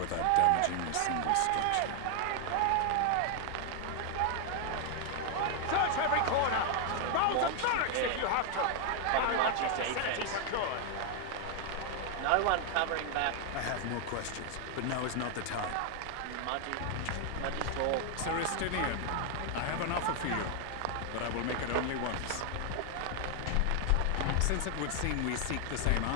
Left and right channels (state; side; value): different; both; correlation 0.00